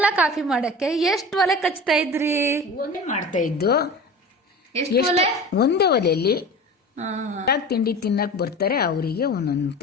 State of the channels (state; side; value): normal; both; correlation 0.34